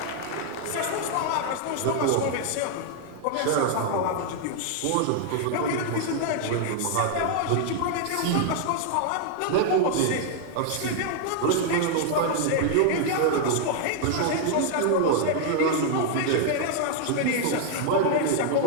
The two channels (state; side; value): different; both; correlation 0.00